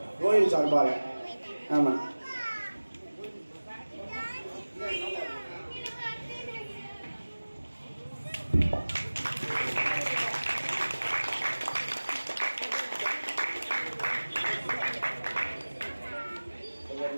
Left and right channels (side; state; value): both; inverted; correlation -1.00